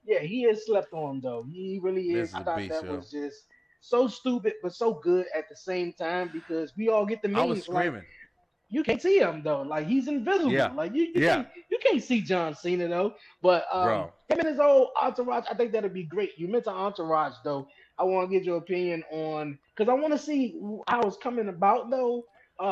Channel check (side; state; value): both; identical; correlation 1.00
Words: he is slept on though. He really is. I thought that was just so stupid but so good at the same time because we all get the memes. I was screaming. You can't see him though, like he's invisible. Yeah. Like you can't see John Cena though. But him and his old entourage, I think that'd be great. You mentioned entourage though. I want to get your opinion on because I want to see how it's coming about though.